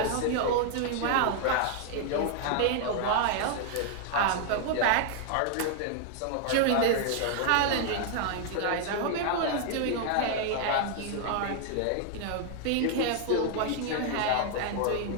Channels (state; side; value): different; both; correlation 0.00